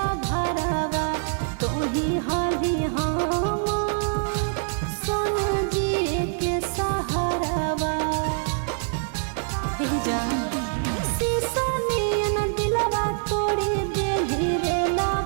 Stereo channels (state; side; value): silent; left; 57 dB below the other